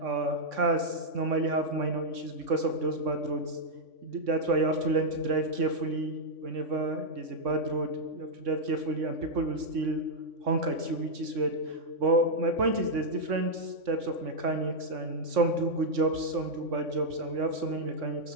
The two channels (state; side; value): late; left; 3.6 ms